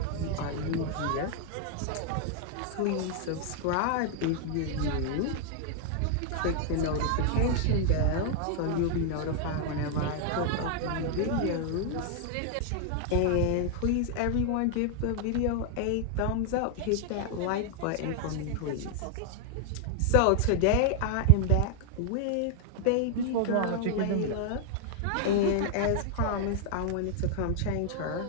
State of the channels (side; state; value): both; different; correlation 0.00